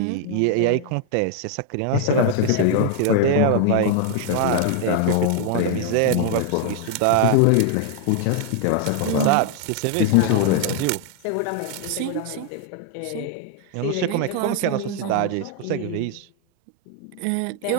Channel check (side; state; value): both; different; correlation 0.00